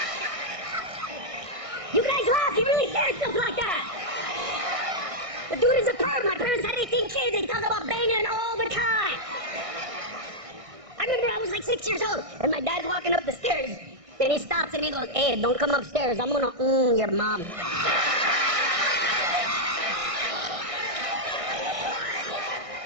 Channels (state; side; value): late; left; 1.6 ms